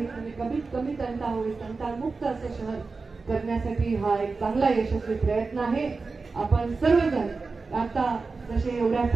आणि कमीत कमी तंटा होईल, तंटामुक्त असं शहर करण्यासाठी हा एक चांगला यशस्वी प्रयत्न आहे. आपण सर्वजण आता जसे एवढ्या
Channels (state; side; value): quieter; left; 4.1 dB